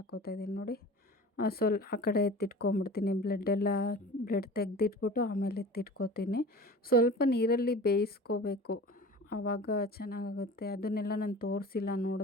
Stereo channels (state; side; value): normal; both; correlation 0.39